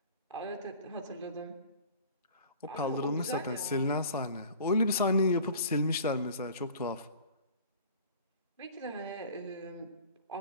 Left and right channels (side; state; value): both; inverted; correlation -0.44